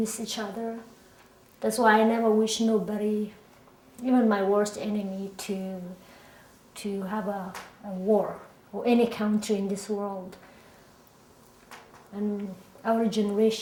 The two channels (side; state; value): both; identical; correlation 1.00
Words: each other. That's why I never wish nobody, even my worst enemy, to have a war, or any country in this world. And our